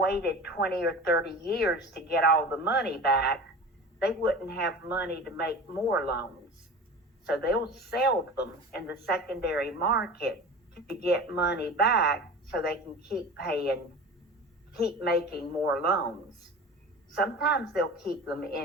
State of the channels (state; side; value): normal; both; correlation 0.35